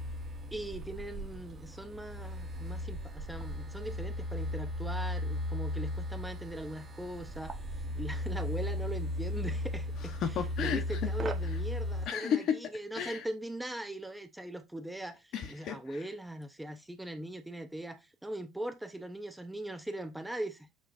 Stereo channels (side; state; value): both; normal; correlation 0.52